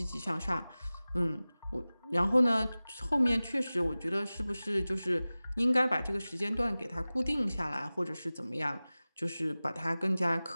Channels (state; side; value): inverted; both; correlation -0.98